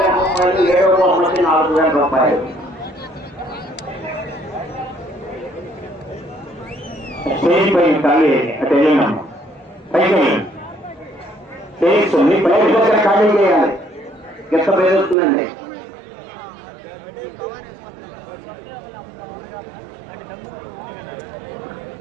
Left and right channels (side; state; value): left; drops out; at 15.2 s